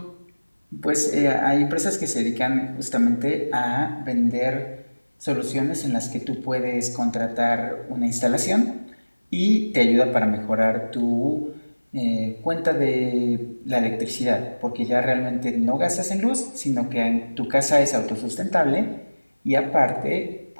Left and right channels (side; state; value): both; inverted; correlation -1.00